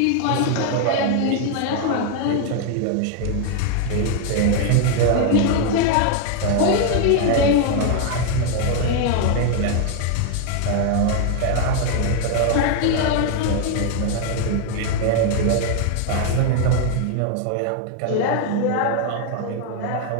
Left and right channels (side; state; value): both; different; correlation 0.00